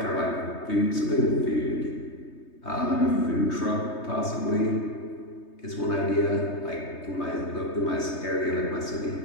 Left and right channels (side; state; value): right; late; 3.2 ms